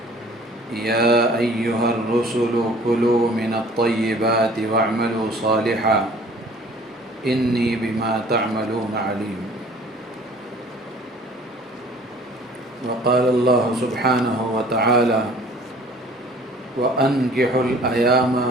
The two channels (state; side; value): normal; both; correlation 0.51